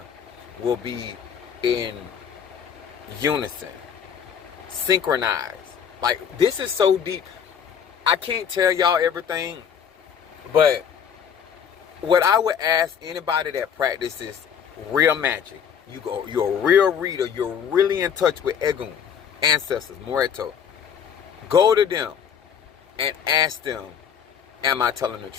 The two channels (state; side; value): quieter; right; 7.8 dB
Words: will be in unison, synchronized. Like, this is so deep. I can't tell y'all everything, but what I would ask anybody that practices real magic, you're a real reader, you're really in touch with Egun, ancestors, Moreto, go to them and ask them, am I telling the